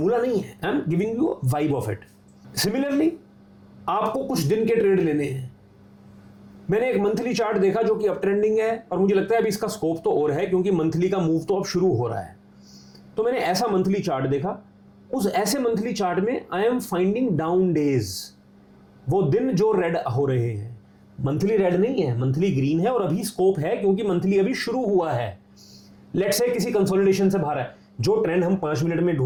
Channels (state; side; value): identical; both; correlation 1.00